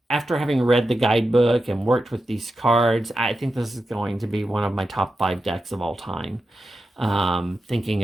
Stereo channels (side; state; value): both; normal; correlation 0.90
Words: after having read the guidebook and worked with these cards, I think this is going to be one of my top 5 decks of all time.